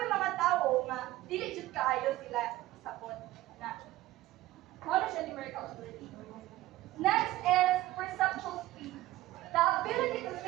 mga tao nga dili jud kaayo sila sabot na. Ano siya numerical ability? Next is perceptual speed. The ability to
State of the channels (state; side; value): quieter; left; 16.6 dB